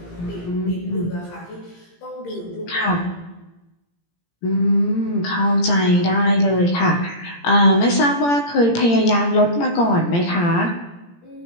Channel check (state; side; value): late; right; 17 ms